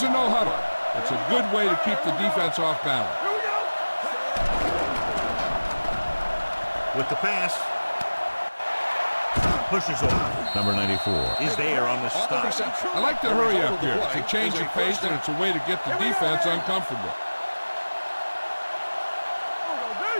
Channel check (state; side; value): inverted; both; correlation -1.00